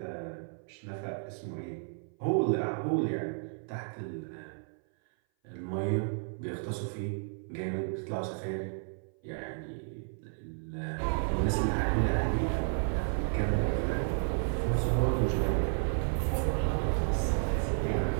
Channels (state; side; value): silent; left; 56 dB below the other